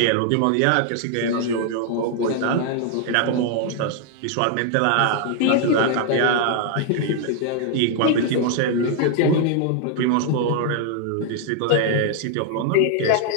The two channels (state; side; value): different; both; correlation 0.00